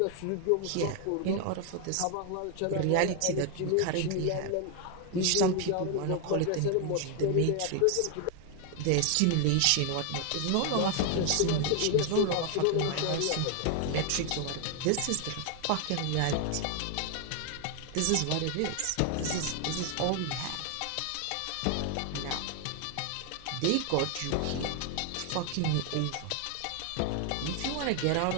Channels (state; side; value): different; both; correlation 0.00